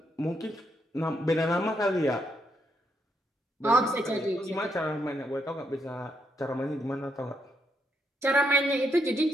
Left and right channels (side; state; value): both; normal; correlation 0.78